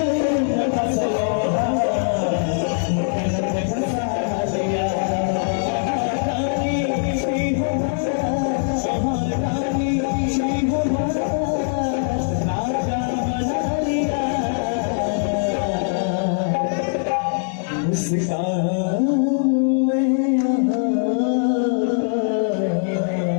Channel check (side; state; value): right; silent; digital silence